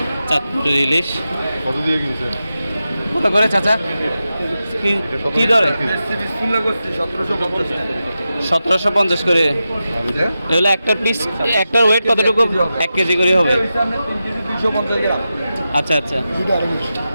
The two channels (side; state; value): both; inverted; correlation -0.91